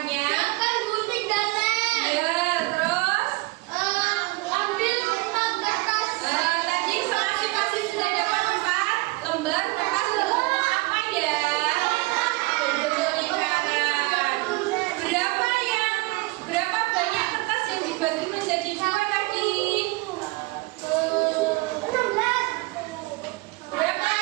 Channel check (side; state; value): left; quieter; 23.7 dB